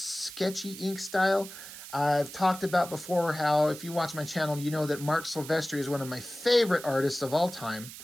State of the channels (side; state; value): right; noise; hiss, 13 dB below the sound